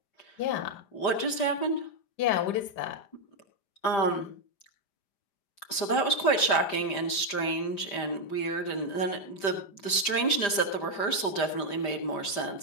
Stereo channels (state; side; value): late; right; 5.0 ms